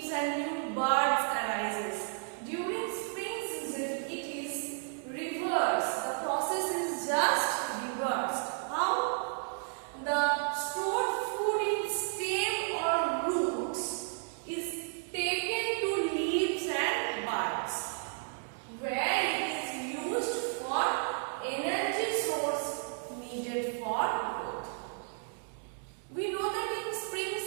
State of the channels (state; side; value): silent; left; 56 dB below the other